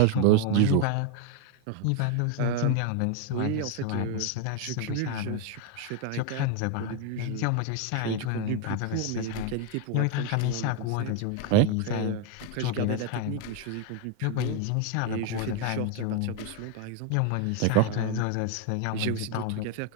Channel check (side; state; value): both; different; correlation 0.01